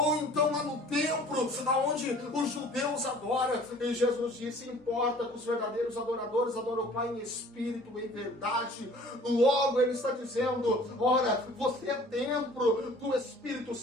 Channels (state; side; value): normal; both; correlation 0.50